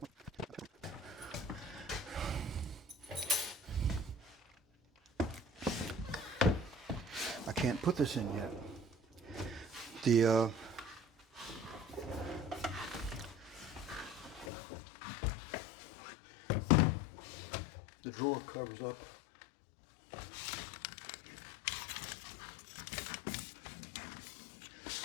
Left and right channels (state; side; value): drops out; right; at 14.5 s